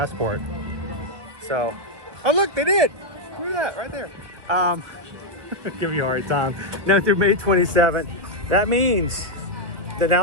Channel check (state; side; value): late; left; 1.5 ms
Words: So, oh look, they did. Look at that right there. Give you a hard time. Now through May 27th. That means that